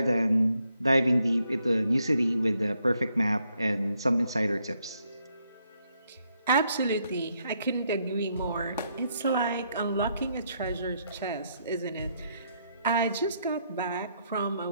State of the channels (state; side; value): inverted; both; correlation -0.75